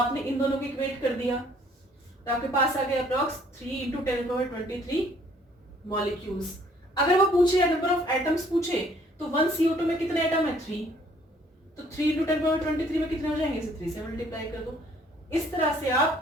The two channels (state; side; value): normal; both; correlation 0.61